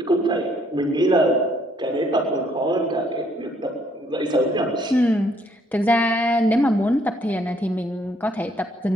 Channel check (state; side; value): normal; both; correlation 0.67